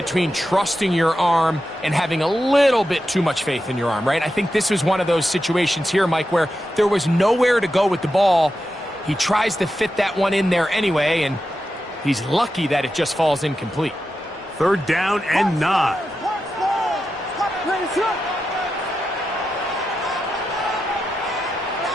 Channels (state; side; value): normal; both; correlation 0.89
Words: trusting your arm and having a little bit too much faith in your arm, right? I think this is one of those situations here, Mike, where there was nowhere to go with the ball. He tries to fit that one in there anyway, and he's lucky that it just falls incomplete. 3rd down and 9.